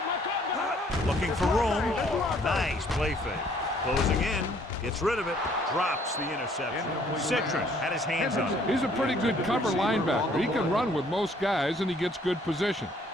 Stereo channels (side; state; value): both; normal; correlation 0.61